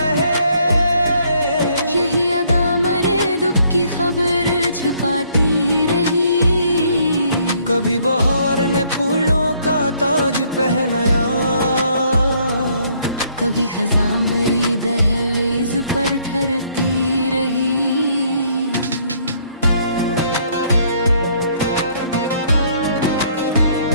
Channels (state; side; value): inverted; both; correlation -0.66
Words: यही अदा मेरे दुख की खबर छुपाती रही। कभी बहार ने फूलों का ताज पहनाया, कभी खज़ां मेरी दहलीज पर ठहरती रही।